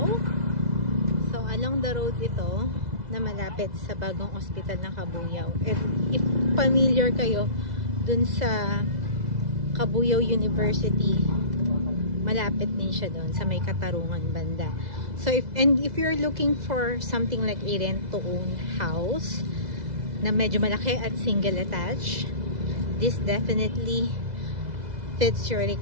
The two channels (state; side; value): late; left; 2.0 ms